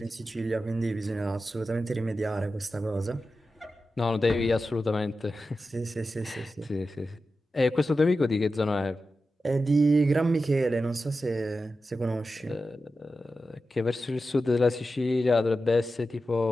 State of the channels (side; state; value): both; normal; correlation 0.92